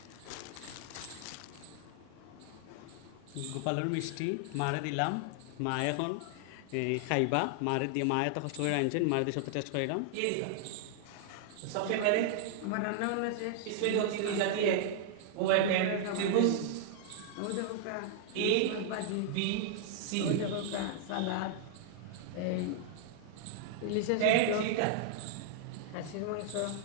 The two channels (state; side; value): different; both; correlation -0.01